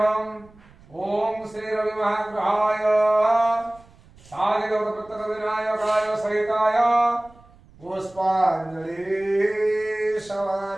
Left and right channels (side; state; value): right; noise; rumble, 26 dB below the sound